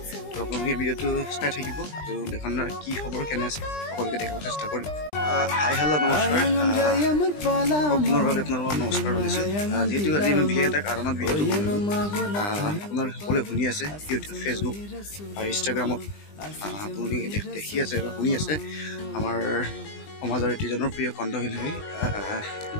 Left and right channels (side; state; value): right; late; 20 ms